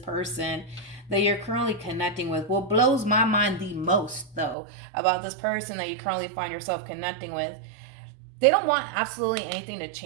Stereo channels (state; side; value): drops out; left; at 4.5 s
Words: that you're currently connecting with. What blows my mind the most, though, about this person that you currently find yourself connecting with, they don't want absolutely anything to